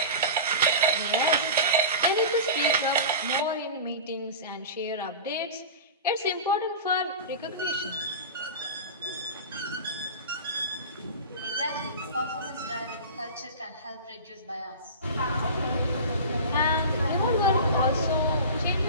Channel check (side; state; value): both; inverted; correlation -0.31